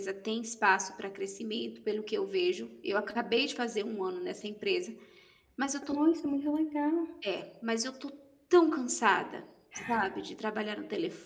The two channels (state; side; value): identical; both; correlation 1.00